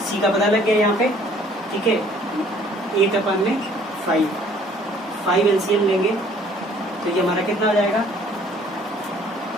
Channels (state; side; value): normal; both; correlation 0.57